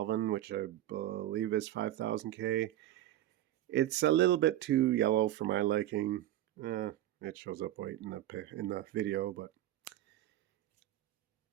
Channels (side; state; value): left; quieter; 13.5 dB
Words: which I believe is 5000K. It's a little bit too yellow for my liking. It shows up white in the video, but